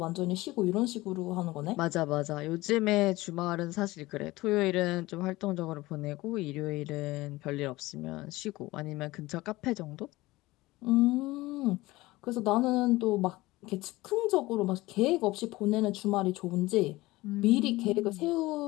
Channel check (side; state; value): right; quieter; 19.4 dB